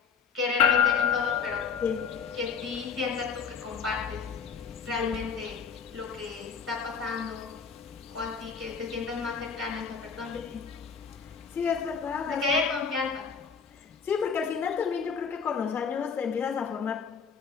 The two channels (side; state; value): right; quieter; 6.2 dB